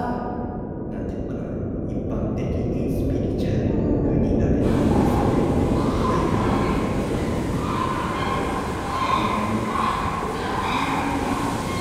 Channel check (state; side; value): identical; both; correlation 1.00